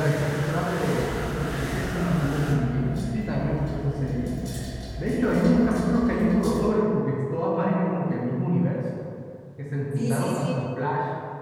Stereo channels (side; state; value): both; identical; correlation 1.00